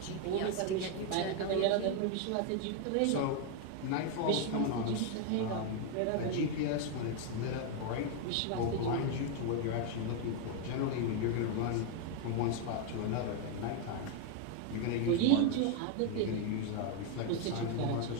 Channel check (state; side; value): different; both; correlation 0.01